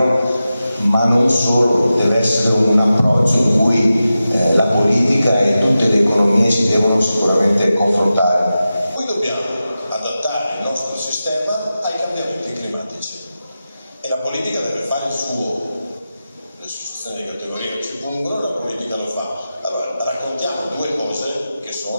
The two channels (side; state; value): both; inverted; correlation -0.93